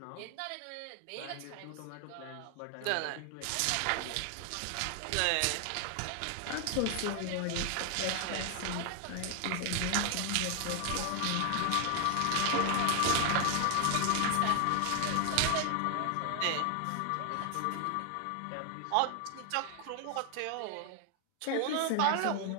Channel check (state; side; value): different; both; correlation 0.00